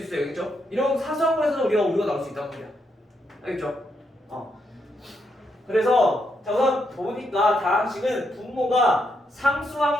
있어요. 알겠죠? 이런 사소한 거에서도 우리가 오류가 나올 수 있단 말이야. 알겠죠? 그래서 자 우선 보니까 다항식은 분모가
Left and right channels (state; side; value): normal; both; correlation 0.79